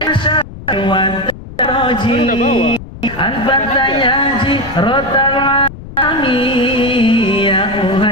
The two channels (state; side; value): noise; left; rumble, 14 dB below the sound